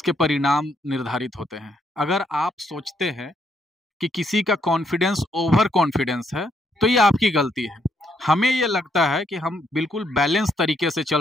परिणाम निर्धारित होते हैं। अगर आप सोचते हैं कि किसी का कॉन्फिडेंस ओवर कॉन्फिडेंस है तो ये आपकी गलती है। हमें ये लगता है कि हम बिल्कुल बैलेंस तरीके से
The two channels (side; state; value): both; normal; correlation 0.73